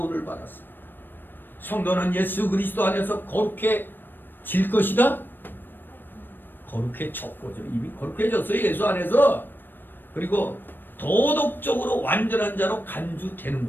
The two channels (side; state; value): right; late; 0.094 ms